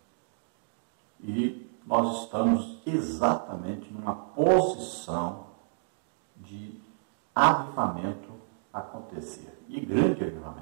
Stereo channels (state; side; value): silent; left; digital silence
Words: E nós estamos exatamente numa posição de avivamento acontecer, e grande